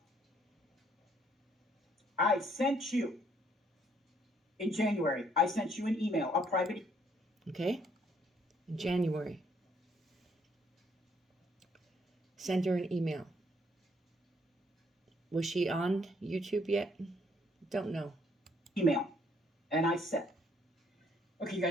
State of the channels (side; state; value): both; normal; correlation 0.67